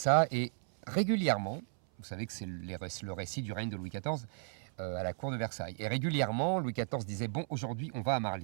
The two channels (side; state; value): left; silent; 55 dB below the other